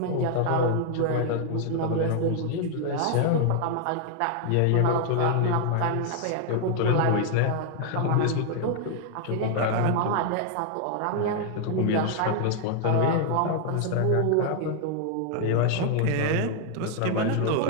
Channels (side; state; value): both; different; correlation 0.00